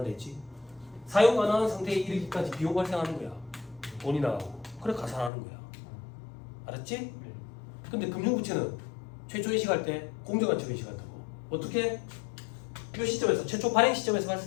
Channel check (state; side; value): drops out; right; at 5.3 s